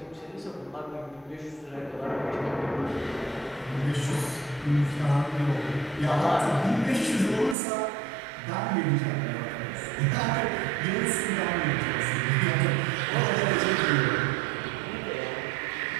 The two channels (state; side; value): drops out; left; at 7.6 s